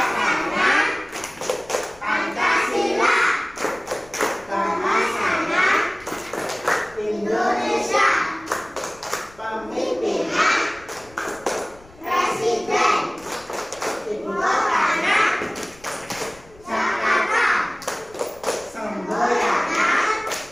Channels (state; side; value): noise; left; rumble, 25 dB below the sound